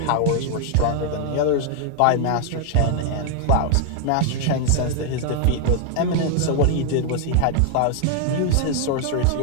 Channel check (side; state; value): both; different; correlation 0.00